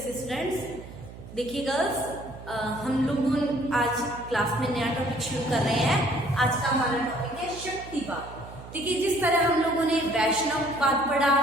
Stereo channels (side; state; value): right; noise; hum, 15 dB below the sound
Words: students. देखिए girls, हम लोग आज class में नया टॉपिक शुरू कर रहे हैं। आज का हमारा टॉपिक है शक्तिवाद। देखिए, जिस तरह हम लोगों ने वैष्णववाद पढ़ा,